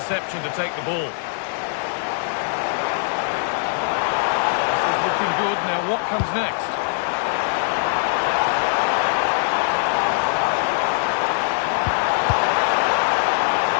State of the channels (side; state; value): right; silent; digital silence